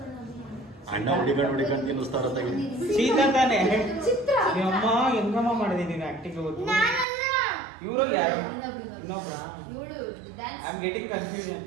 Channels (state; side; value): drops out; left; at 7.1 s